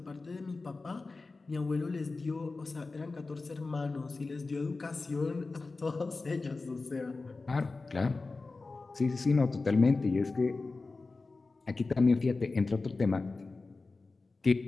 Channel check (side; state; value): right; quieter; 3.7 dB